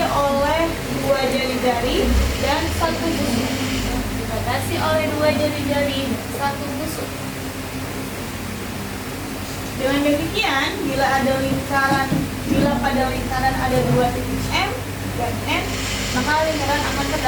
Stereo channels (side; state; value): both; identical; correlation 1.00